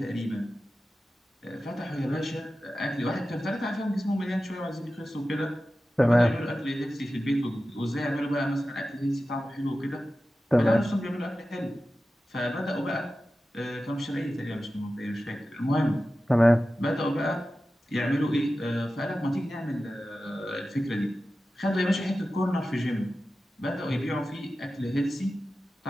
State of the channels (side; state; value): both; normal; correlation 0.94